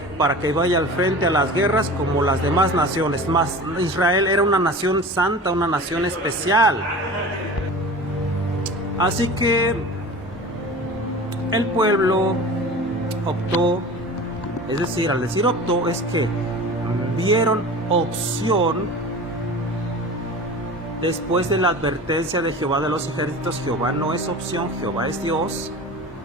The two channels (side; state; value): both; normal; correlation 0.36